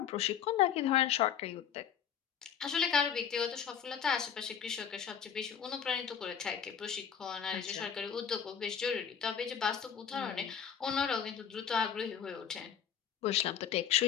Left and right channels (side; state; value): right; quieter; 8.1 dB